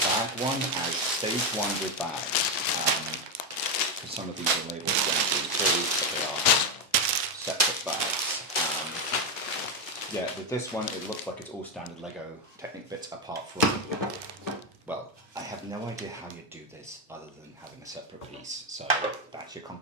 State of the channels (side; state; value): both; normal; correlation 0.08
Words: bag one as stage one with bags. Because some of these are labelled 1, 2, 3, but they are separate bags. Yeah, with this one it looks like it's all standard Lego Technic bits apart from, well, I have no idea how you do this other than having a separate piece. So that's your